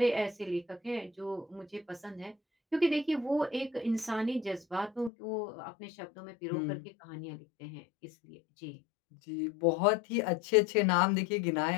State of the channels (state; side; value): drops out; right; at 5.1 s